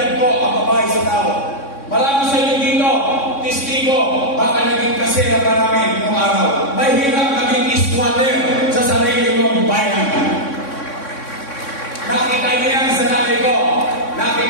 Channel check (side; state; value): right; late; 3.6 ms